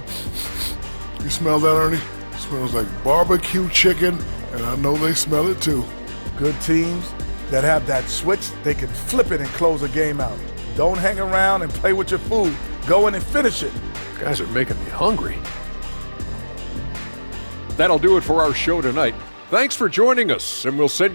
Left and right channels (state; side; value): inverted; both; correlation -1.00